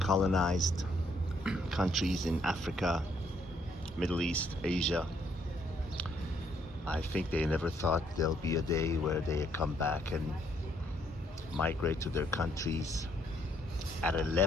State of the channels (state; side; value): normal; both; correlation 0.70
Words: colonized countries in Africa, Middle East, Asia, I think they never thought there'll be a day where they come back and migrate to their countries at a